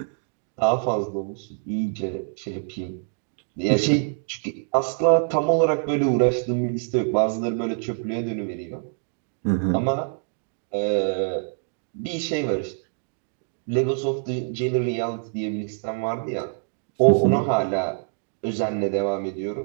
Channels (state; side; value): silent; left; digital silence